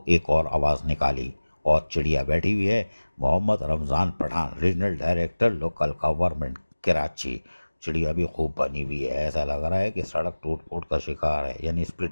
एक और आवाज़ निकाली और चिड़िया बैठी हुई है। Mohammad Ramzan Pathan, regional director local government Karachi. चिड़िया भी खूब बनी हुई है, ऐसा लग रहा है कि सड़क टूट फूट का शिकार है, यानी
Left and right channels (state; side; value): inverted; both; correlation -1.00